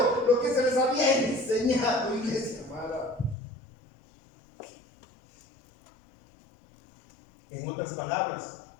lo que se les había enseñado, iglesia amada. En otras palabras,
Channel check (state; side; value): drops out; right; at 3.4 s